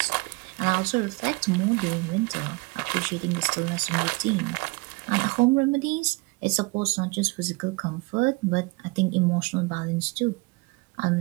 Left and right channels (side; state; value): left; quieter; 26.8 dB